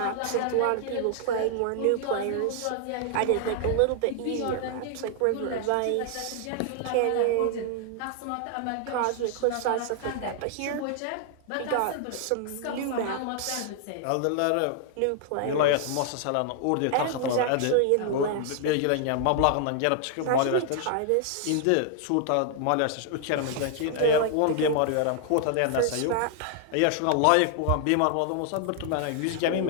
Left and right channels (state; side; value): different; both; correlation 0.00